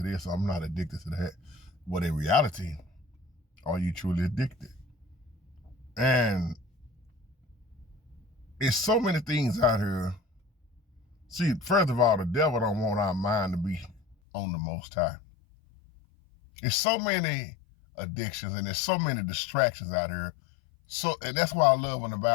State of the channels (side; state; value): right; drops out; at 14.2 s